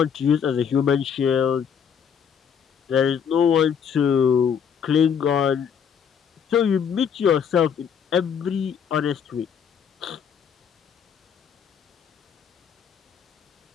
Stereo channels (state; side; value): quieter; right; 7.5 dB